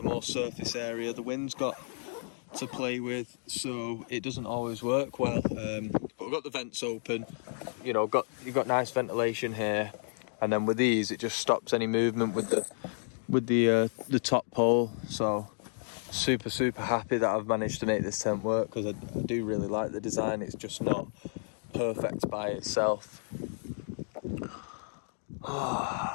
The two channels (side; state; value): right; silent; digital silence